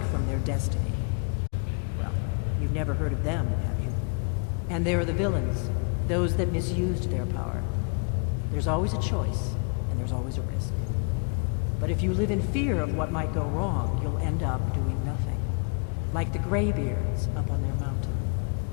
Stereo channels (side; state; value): right; quieter; 39.0 dB